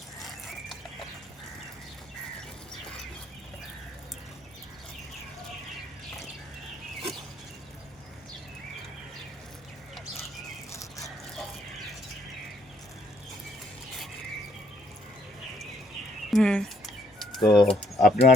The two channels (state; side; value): normal; both; correlation 0.68